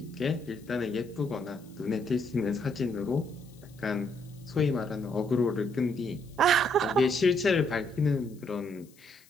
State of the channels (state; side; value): noise; left; hiss, 28 dB below the sound